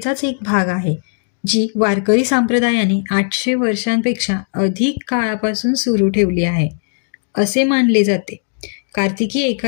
एक भाग आहे, जी वारकरी संप्रदायाने 800 वर्षांपेक्षा अधिक काळापासून सुरू ठेवली आहे असे मानले जाते. कार्तिकी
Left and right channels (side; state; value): right; silent; digital silence